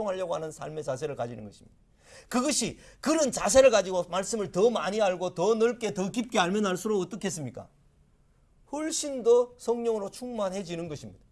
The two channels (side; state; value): both; identical; correlation 1.00